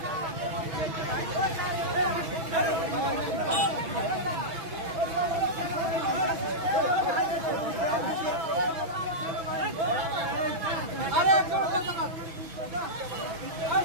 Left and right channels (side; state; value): left; late; 6.1 ms